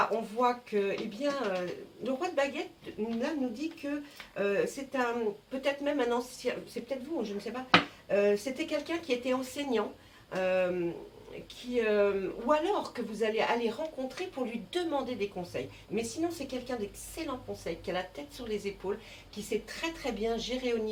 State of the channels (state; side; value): identical; both; correlation 1.00